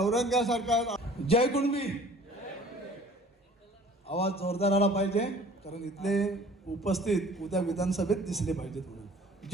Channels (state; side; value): normal; both; correlation 0.49